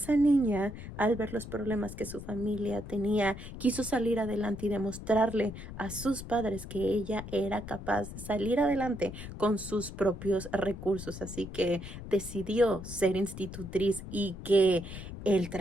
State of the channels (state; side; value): noise; left; rumble, 11 dB below the sound